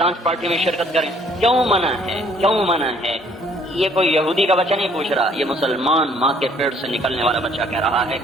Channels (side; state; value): both; normal; correlation 0.61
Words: پارٹی میں شرکت کریں، کیوں منع ہے، کیوں منع ہے۔ یہ کوئی یہودی کا بچہ نہیں پوچھ رہا، یہ مسلمان ماں کے پیٹ سے نکلنے والا بچہ کہہ رہا ہے،